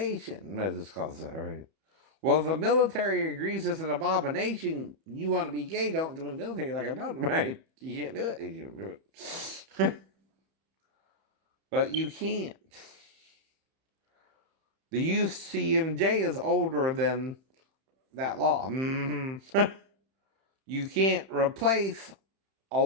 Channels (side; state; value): left; late; 31 ms